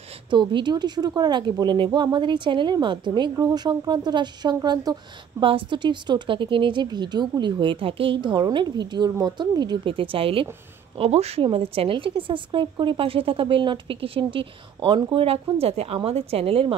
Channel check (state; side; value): quieter; left; 8.3 dB